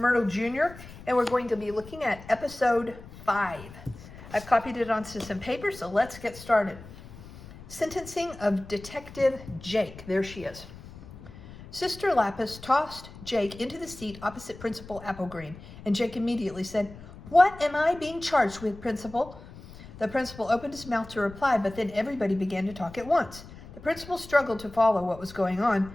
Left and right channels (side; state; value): left; noise; rumble, 17 dB below the sound